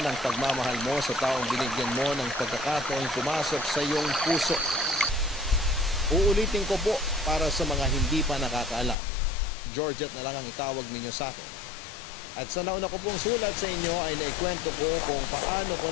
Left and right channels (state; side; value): drops out; right; at 9.0 s